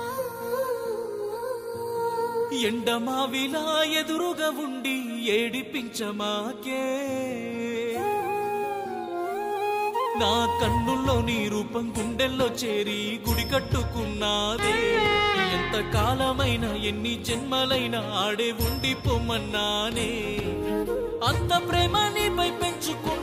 ఎండమావిలా ఎదురుగా ఉండి ఏడిపించమాకే నా కన్నుల్లో నీ రూపం గుండెల్లో చేరి గుడి కట్టుకున్నాదే ఎంత కాలమైనా ఎన్ని జన్మలైనా ఆడే ఉండిపోమన్నానే అంత ప్రేమ నీపై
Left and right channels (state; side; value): identical; both; correlation 1.00